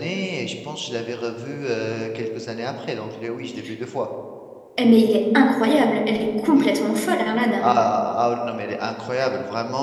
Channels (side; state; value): both; identical; correlation 1.00